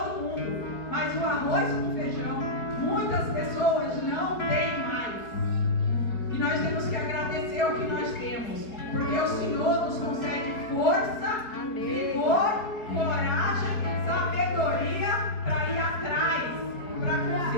mundo, mas o arroz com feijão, muitas pessoas não têm mais. E nós temos que agradecer o que nós temos, porque o Senhor nos concede força, vigor, coragem, sabedoria para ir atrás, para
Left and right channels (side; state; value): right; late; 4.7 ms